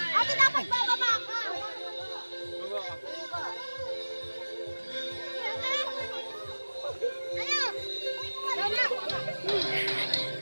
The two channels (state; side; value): inverted; both; correlation -1.00